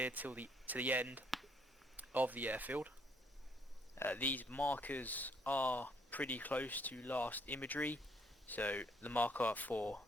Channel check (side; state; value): both; normal; correlation 0.68